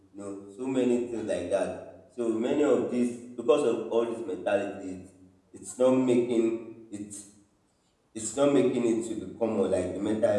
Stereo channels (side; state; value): both; identical; correlation 1.00